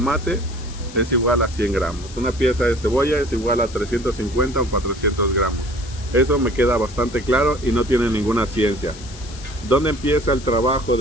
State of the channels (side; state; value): left; noise; hiss, 17 dB below the sound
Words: es igual a 100 gramos, una pieza de cebolla es igual a 350 o 400 gramos. Eso me queda bastante claro y no tiene ninguna ciencia. ¿Dónde empieza el trabajo